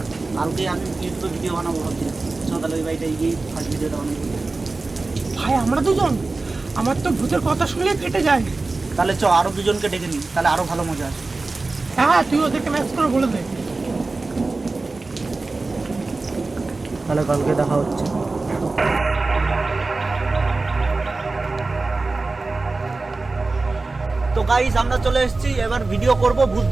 কালকে আমি ইউটিউবে ভিডিও বানাবো ভাবছি, চল তাহলে ওই বাড়িটা গিয়ে ফার্স্ট ভিডিওটা বানাবো। ভাই আমরা দুজন, আমার তো ভূতের কথা শুনলে ফেটে যায়। তাহলে চ আরো দুজনকে ডেকে নিই, তাহলে আরো ভালো মজা আসে। হ্যাঁ তুই ওদেরকে ম্যাচ করে বলে দে। তাহলে কালকে দেখা হচ্ছে। তো গাইস আমরা চলে এসেছি, এবার ভিডিও করব, ভূত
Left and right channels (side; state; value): left; quieter; 3.5 dB